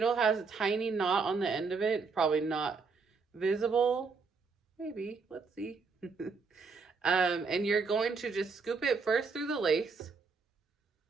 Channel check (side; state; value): left; quieter; 4.8 dB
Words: has a tiny knot on the end of it, probably not visible. Maybe, let's see. And you're going to just scoop it first through the lace.